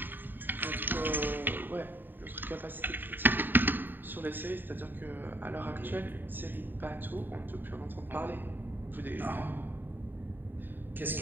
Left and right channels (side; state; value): left; late; 0.092 ms